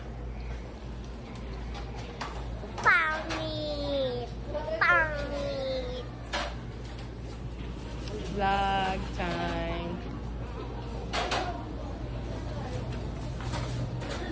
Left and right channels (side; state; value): both; identical; correlation 1.00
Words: Pangit. Vlog time.